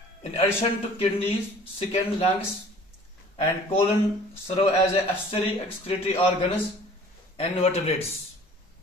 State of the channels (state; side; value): normal; both; correlation 0.49